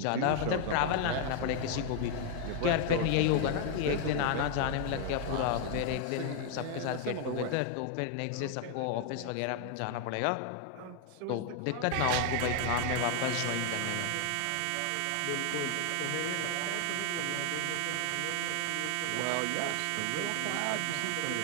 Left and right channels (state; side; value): different; both; correlation 0.00